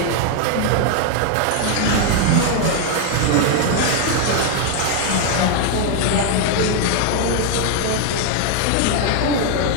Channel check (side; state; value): both; different; correlation 0.00